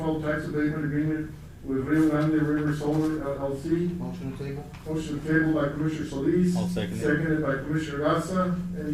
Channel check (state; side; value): identical; both; correlation 1.00